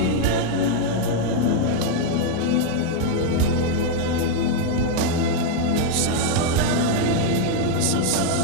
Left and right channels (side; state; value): both; different; correlation 0.00